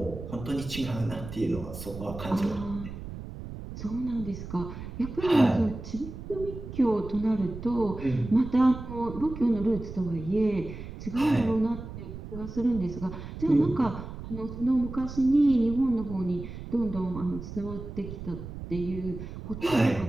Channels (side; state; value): right; noise; rumble, 10 dB below the sound